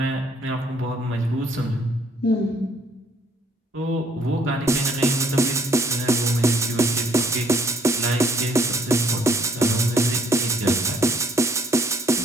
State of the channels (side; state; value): both; normal; correlation 0.63